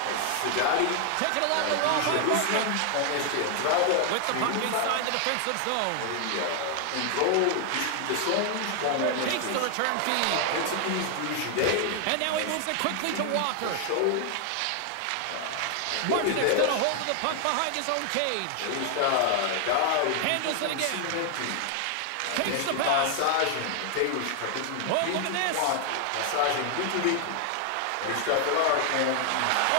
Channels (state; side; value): different; both; correlation 0.00